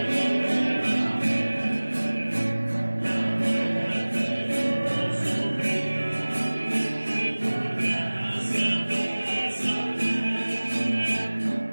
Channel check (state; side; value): inverted; both; correlation -1.00